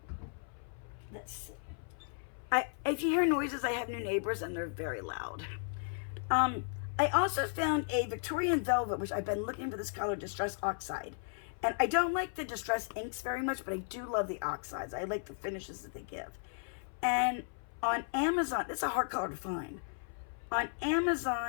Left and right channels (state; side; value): silent; right; 54 dB below the other